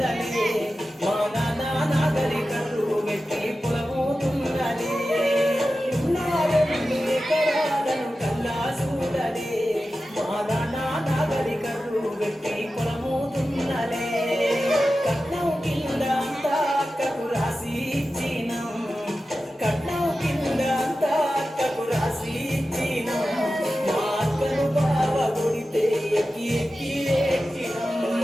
మా నాన్న నాగరికలు వెట్టి పొలమోతున్నలే నా 2 ఎకరాలను కల్లా చూడలే మా నాన్న నాగరికలు వెట్టి పొలమోతున్నలే కట్నం కింద అంతా అక్కకు రాసి ఇచ్చినం కట్నం కింద అంతా అక్కకు రాసి ఇచ్చినం మా అక్కను బావ కొడితే ఎక్కి ఎక్కి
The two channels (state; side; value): normal; both; correlation 0.93